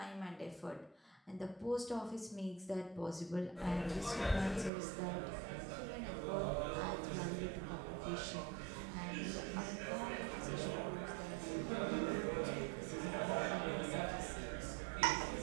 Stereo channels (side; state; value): left; drops out; at 4.7 s